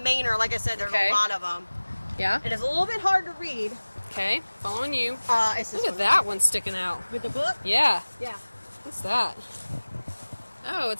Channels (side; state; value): both; inverted; correlation -1.00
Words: Like I said, there's Okay. a lot of them. Yeah. It is a little bit hard to read. Okay, following you. It's this Look at one. that one sticking out. With the book? Yeah. Yeah. What's that? Oh,